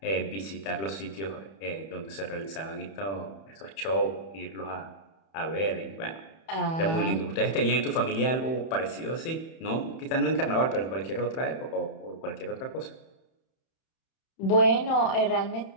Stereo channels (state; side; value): late; right; 31 ms